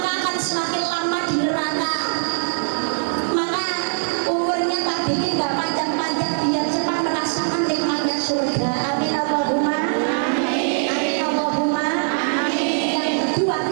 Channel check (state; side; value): silent; left; digital silence